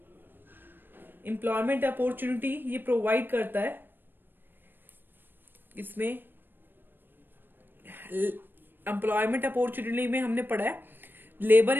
एम्प्लॉयमेंट अपॉर्चुनिटी ये प्रोवाइड करता है. इसमें एम्प्लॉयमेंट अपॉर्चुनिटी में हमने पढ़ा है लेबर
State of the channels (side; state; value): left; late; 0.095 ms